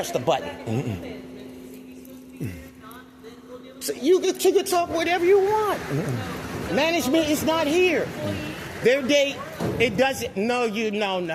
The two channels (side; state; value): both; identical; correlation 1.00